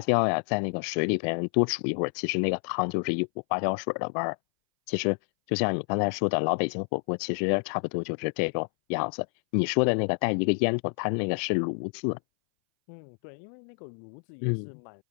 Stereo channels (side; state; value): right; silent; 59 dB below the other